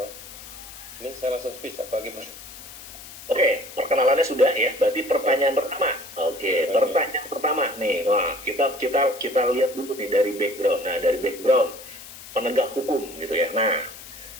Ini saya langsung speech apa gimana? Oke, perkenalannya sudah ya. Berarti pertanyaan pertama. Oke, pertanyaan pertama nih. Wah, kita lihat dulu nih dari background. Nah, dari background penegak hukum gitu ya. Nah,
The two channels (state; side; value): noise; left; hiss, 15 dB below the sound